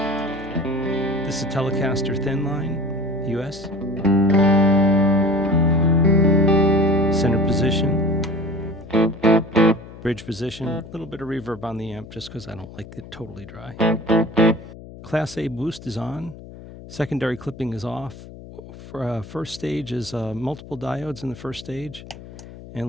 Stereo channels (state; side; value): noise; left; hum, 16 dB below the sound